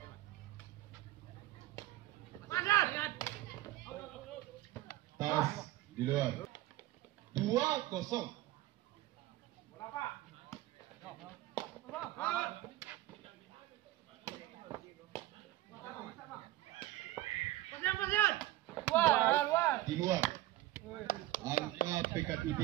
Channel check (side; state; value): left; quieter; 16.1 dB